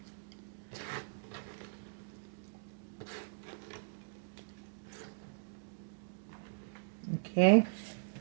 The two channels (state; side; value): silent; left; digital silence